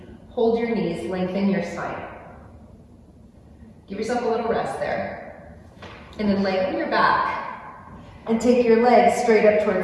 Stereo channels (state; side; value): identical; both; correlation 1.00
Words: hold your knees, lengthen your spine. Give yourself a little rest there. And then lengthen your back and take your legs straight up